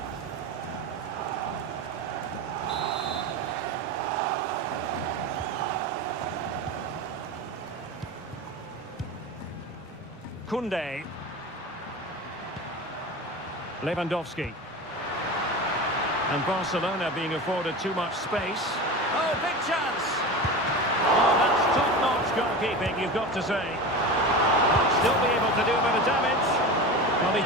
Koundé. Lewandowski. And Barcelona being afforded too much space. Oh, big chance! Oh, that's top-notch goalkeeping, you've got to say. Still be able to do a bit of damage. Well, he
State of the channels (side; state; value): both; normal; correlation 0.28